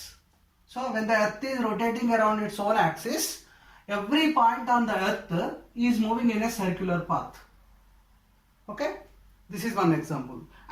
So when the Earth is rotating around its own axis, every point on the Earth is moving in a circular path. Okay, this is one example.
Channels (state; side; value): identical; both; correlation 1.00